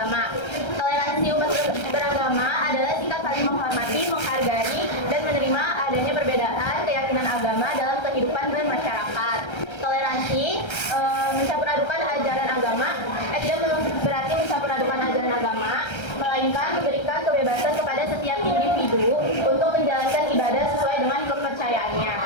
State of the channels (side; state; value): right; late; 1.3 ms